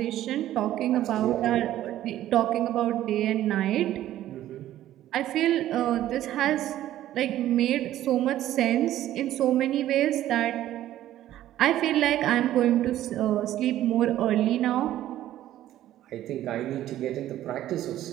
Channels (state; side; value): quieter; left; 13.2 dB